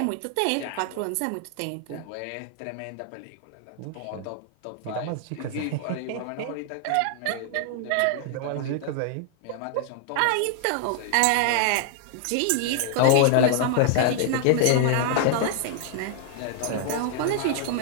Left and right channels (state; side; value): different; both; correlation 0.00